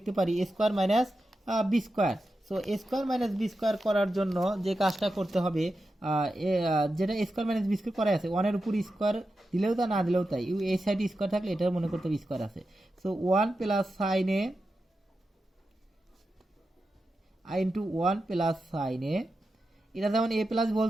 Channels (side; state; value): both; normal; correlation 0.90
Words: পারি square minus B square. So square minus B square করার জন্য যে কাজটা করতে হবে, যেটা স্কোয়ার মাইনাস বি স্কোয়ার করা আছে, 1 এর উপর স্কোয়ার দিলেও তা না দিলেও তাই, এই সাইডে স্কোয়ার থাকলে এটা মনে করতে হবে স্কোয়ার আছে। So 1 plus sine A into 1 plus sine A, এটা যেমন এ প্লাস হোল